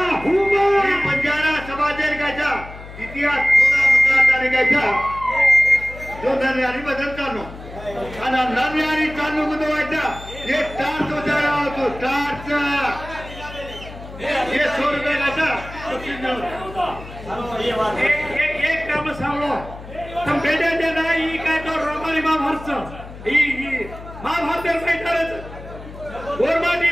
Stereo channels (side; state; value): left; noise; hum, 15 dB below the sound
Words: पंजारा समाजेर गायचा इतिहास थोडा मुद्दा गायचा जो नन्यारी भजन चालू आणि नन्यारी चालू गुदवायचा हे टार्च उजाळा होतो टार्च ये 100 रुपये गायचा एक काम सांगलो तुम बेटे दे नाही काय तो रोमानी महाभारत ही महाभारत मैदानाचं गोरमाटी